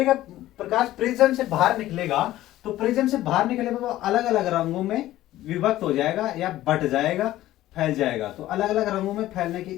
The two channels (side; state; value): right; quieter; 14.9 dB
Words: का प्रकाश प्रिज्म से बाहर निकलेगा। तो प्रिज्म से बाहर निकले वो अलग अलग रंगों में विभक्त हो जाएगा या बट जाएगा, फैल जाएगा। तो अलग अलग रंगों में फैलने की